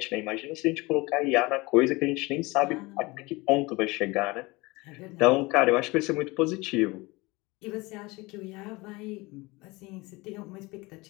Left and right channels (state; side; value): quieter; right; 23.4 dB